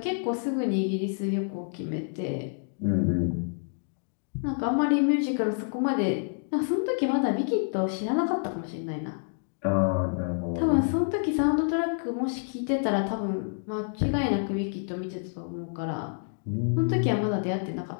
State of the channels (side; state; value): right; silent; digital silence